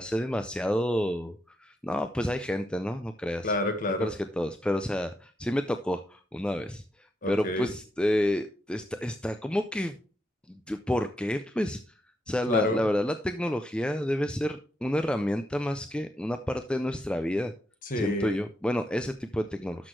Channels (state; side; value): normal; both; correlation 0.81